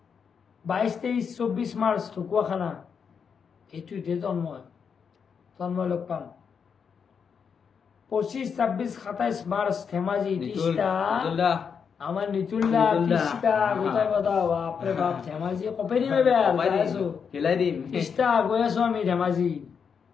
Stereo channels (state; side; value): quieter; right; 6.5 dB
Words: 22-23-24 মাৰ্চ ঢকুৱাখানা এইটোতে তন্ময় লগ পাম 25-26-27 মাৰ্চ ধেমাজি তিষ্টা আমার নিতুল্লা তিস্তা গোটাই কথা বাপরে বাপ ধেমাজি কপেরি মে বের আছো খেলাই দিম তিস্তা গৈ আছো আমি ধেমাজি